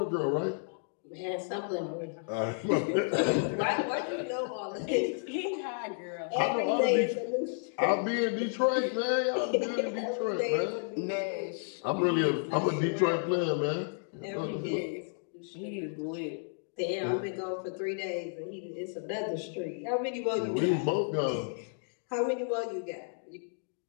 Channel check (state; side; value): silent; right; 56 dB below the other